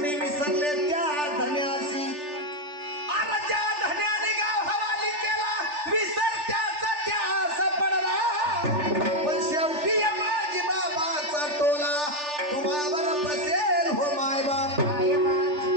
विसरले त्या धन्यासी अरे ज्या धन्याने गाव हवाली केला विसर त्याचा त्यास पडला पण शेवटी माझी बाबाचा टोला तुम्हावर बसेल हो माय बाप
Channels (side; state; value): left; late; 3.4 ms